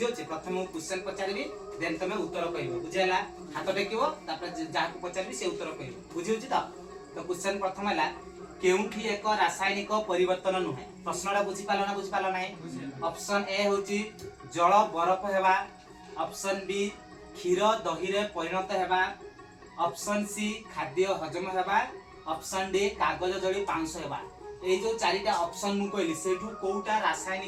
छी। प्रथम मु क्वेश्चन पचारिबी देन तमे उत्तर कहिबो बुझियला हाथ टेकिबो तापर जाको पचारिबी से उत्तर कहिबो बुझियो छी। तो क्वेश्चन प्रथम हला केउठी एक रासायनिक परिवर्तन नुहे प्रश्नटा बुझी पालो नाही। ऑप्शन ए होची जल बरफ हेबा, ऑप्शन बी क्षीर दही रे परिणत हेबा, ऑप्शन सी खाद्य हजम हेबा, ऑप्शन डी कागज जड़ी पांच हेबा। ए जो चारिटा ऑप्शन मु कहली सेठू कोउटा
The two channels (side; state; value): both; identical; correlation 1.00